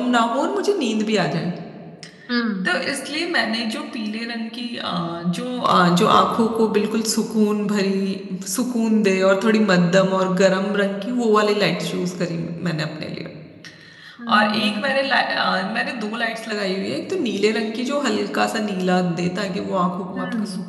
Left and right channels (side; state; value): both; identical; correlation 1.00